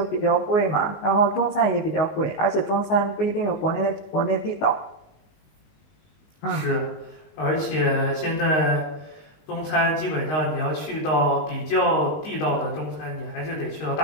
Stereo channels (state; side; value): late; right; 19 ms